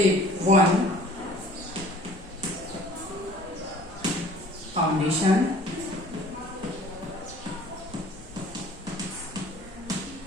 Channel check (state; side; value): normal; both; correlation 0.50